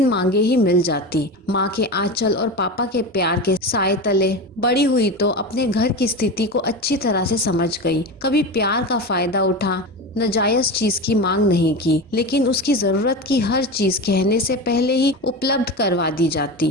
मांगे ही मिल जाती। माँ के आंचल और पापा के प्यार के साए तले बड़ी हुई तो अपने घर की स्थिति को अच्छी तरह से समझ गई। कभी प्यार का फायदा उठा, नाजायज चीज की मांग नहीं की, लेकिन उसकी जरूरत की हर चीज कहने से पहले ही उपलब्ध करवा दी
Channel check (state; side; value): normal; both; correlation 0.24